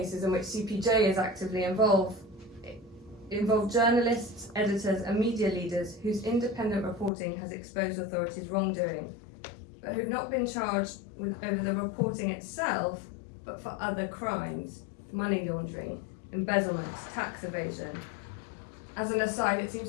in which CPJ is actively involved involve journalists, editors and media leaders whose independent reporting has exposed authorities' wrongdoing, but who've not been charged over the reporting itself, but for other crimes: money laundering, embezzlement, tax evasion. As an aside, it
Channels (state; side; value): drops out; right; at 7.1 s